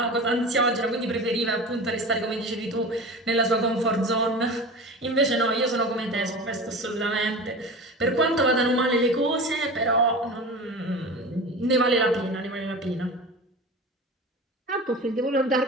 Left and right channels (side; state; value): both; normal; correlation 0.32